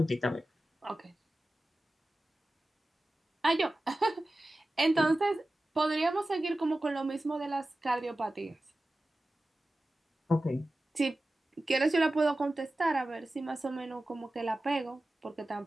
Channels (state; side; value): normal; both; correlation 0.95